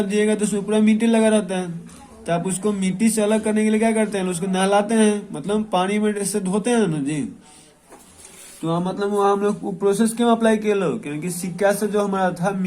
जाइएगा तो उसमें पूरा मिट्टी लगा रहता है, तो आप उसको मिट्टी से अलग करने के लिए क्या करते हैं, उसको नहलाते हैं, मतलब पानी में से धोते हैं ना जी। तो मतलब वहाँ हम लोग प्रोसेस क्यों अप्लाई किए लोग, क्योंकि सिक्का से जो हमारा था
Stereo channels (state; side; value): identical; both; correlation 1.00